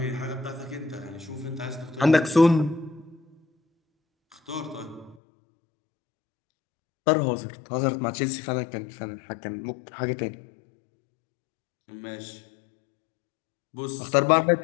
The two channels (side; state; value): right; drops out; at 5.2 s